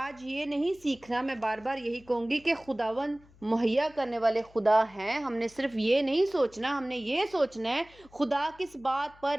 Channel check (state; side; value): noise; left; hum, 27 dB below the sound